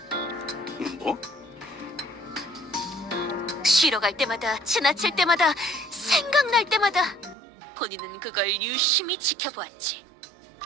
뭐? 쉬러 갈 때마다, 지나칠 때마다, 생각날 때마다 본인은 그걸 유심히 지켜보았지.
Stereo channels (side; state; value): left; drops out; at 7.4 s